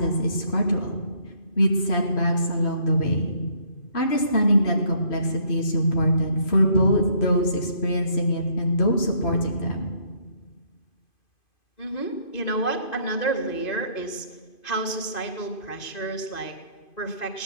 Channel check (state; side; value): late; right; 2.5 ms